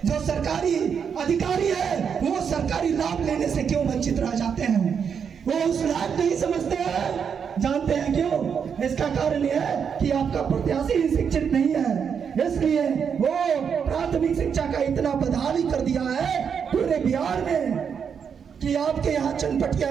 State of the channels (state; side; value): quieter; left; 7.0 dB